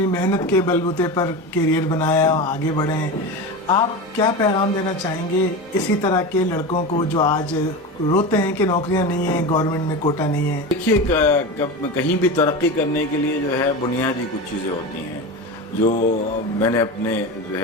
محنت کے بلبوتے پر کیریئر بنایا، آگے بڑھے ہیں، آپ کیا پیغام دینا چاہیں گے اسی طرح کے لڑکوں کو جو آج روتے ہیں کہ نوکریاں نہیں ہیں، گورنمنٹ میں کوٹا نہیں ہے؟ دیکھیے، کہیں بھی ترقی کرنے کے لیے جو ہے بنیادی کچھ چیزیں ہوتی ہیں جو میں نے اپنے جو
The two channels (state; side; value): normal; both; correlation 0.24